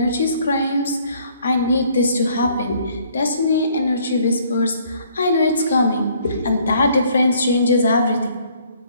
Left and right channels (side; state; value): both; inverted; correlation -0.61